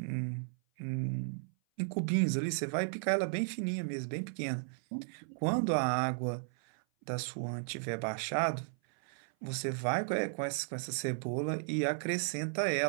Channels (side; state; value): left; silent; 55 dB below the other